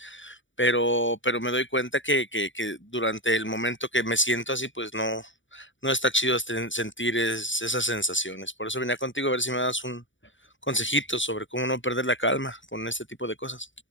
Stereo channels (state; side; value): late; right; 0.55 ms